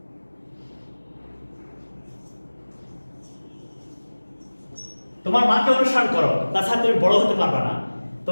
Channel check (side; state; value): both; inverted; correlation -1.00